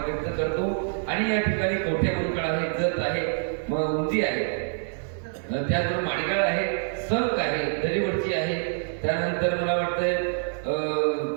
व्यक्त करतो। आणि या ठिकाणी कवठे मंडळ आहे, जत आहे, उंची आहे, त्याचबरोबर माडगाळ आहे, संक आहे, दरीवडची आहे, त्यानंतर मला वाटतं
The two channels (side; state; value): left; silent; digital silence